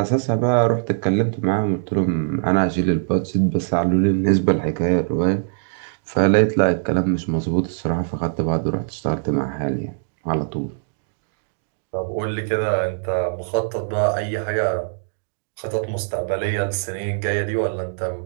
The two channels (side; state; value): left; silent; digital silence